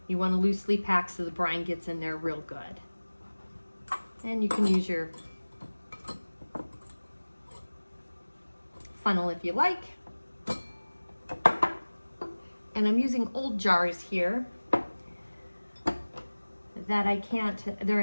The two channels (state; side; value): inverted; both; correlation -1.00